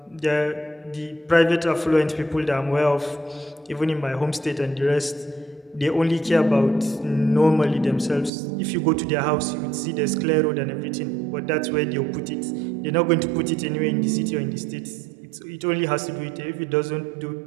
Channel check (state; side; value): drops out; left; at 8.3 s